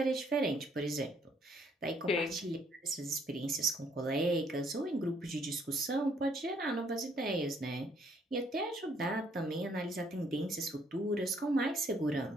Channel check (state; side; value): normal; both; correlation 0.67